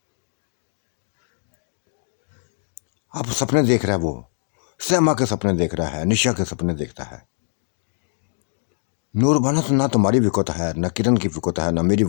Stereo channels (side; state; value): right; silent; digital silence